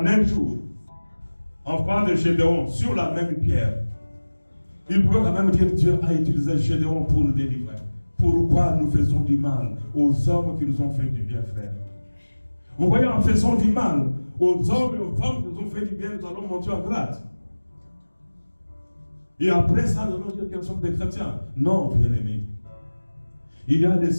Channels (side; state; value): both; inverted; correlation -1.00